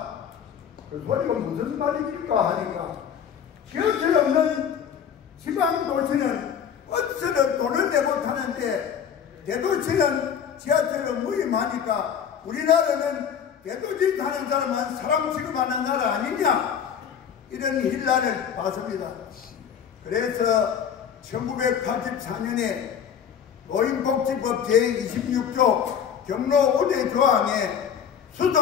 그 소리가 무슨 말입니까 하니까, 지하철 없는 지방 도시는 어디서든 돈을 내고 타는데 대도시는 지하철을 무임하니까 우리나라는 대도시 타는 사람은 사람 취급하는 나라 아니냐, 이런 일난을 봤습니다. 그래서 1984년에 노인복지법 제26조 경로 우대 조항에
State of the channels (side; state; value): right; quieter; 8.1 dB